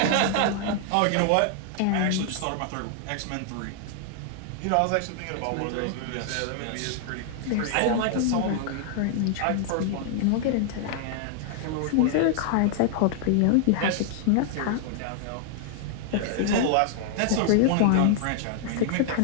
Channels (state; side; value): different; both; correlation 0.00